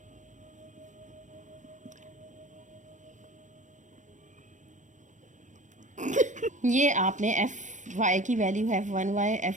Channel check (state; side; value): late; left; 0.35 ms